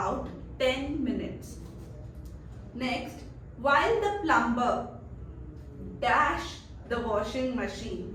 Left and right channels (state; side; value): identical; both; correlation 1.00